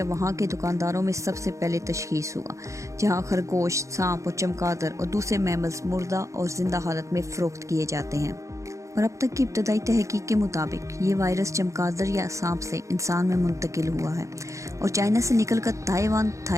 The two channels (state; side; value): late; left; 0.15 ms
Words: وہاں کے دکانداروں میں سب سے پہلے تشخیص ہوا، جہاں خرگوش، سانپ اور چمگادڑ اور دوسرے میملز مردہ اور زندہ حالت میں فروخت کیے جاتے ہیں، اور اب تک کی ابتدائی تحقیق کے مطابق یہ وائرس چمگادڑ یا سانپ سے انسان میں منتقل ہوا ہے اور چائنا سے نکل کر Taiwan,